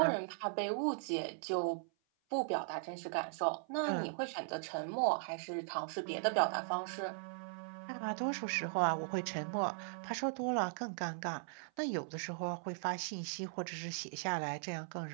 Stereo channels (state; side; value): silent; left; 52 dB below the other